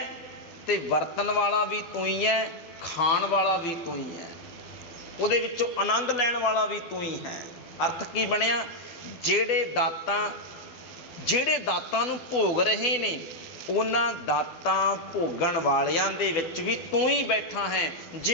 ਤੇ ਵਰਤਣ ਵਾਲਾ ਵੀ ਤੂੰ ਹੀ ਹੈ, ਖਾਣ ਵਾਲਾ ਵੀ ਤੂੰ ਹੀ ਹੈ, ਉਹਦੇ ਵਿੱਚੋਂ ਆਨੰਦ ਲੈਣ ਵਾਲਾ ਵੀ ਤੂੰ ਹੀ ਹੈ। ਅਰਥ ਕੀ ਬਣਿਆ? ਜਿਹੜੇ ਦਾਤਾਂ ਨੂੰ ਭੋਗ ਰਹੇ ਨੇ, ਉਹਨਾਂ ਦਾਤਾਂ ਭੋਗਣ ਵਾਲਿਆਂ ਦੇ ਵਿੱਚ ਵੀ ਤੂੰ ਹੀ ਬੈਠਾ ਹੈ।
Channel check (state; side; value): late; right; 12 ms